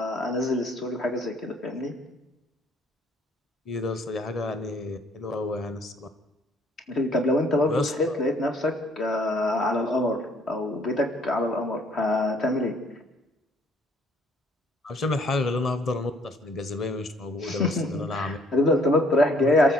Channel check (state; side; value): normal; both; correlation 0.62